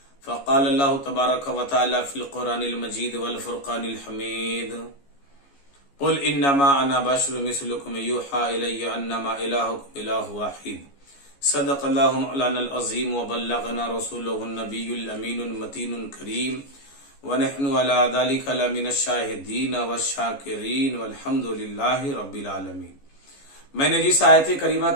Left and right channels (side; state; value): right; late; 14 ms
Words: فقال اللہ تبارک و تعالی فی القرآن المجید والفرقان الحمید قل انما انا بشر مثلکم یوحى الی انما الہکم الہ واحد صدق اللہ مولانا العظیم وبلغنا رسولہ النبی الامین المتین الکریم ونحن على ذلك لمن الشاہدین والشاکرین والحمد للہ رب العالمین۔ میں نے جس آیت کریمہ